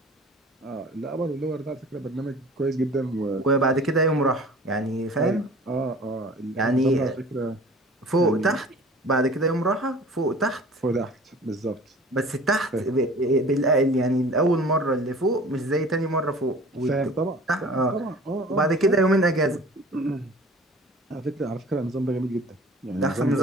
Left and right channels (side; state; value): both; normal; correlation 0.45